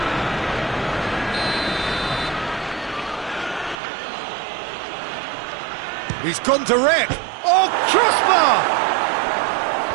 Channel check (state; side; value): drops out; left; at 3.8 s